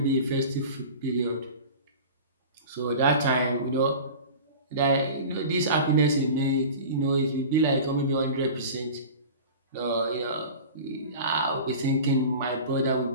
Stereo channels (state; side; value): inverted; both; correlation -0.36